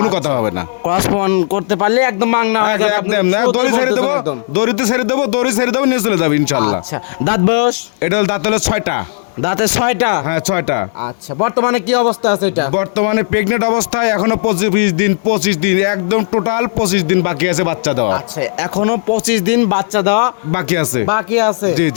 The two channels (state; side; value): silent; right; digital silence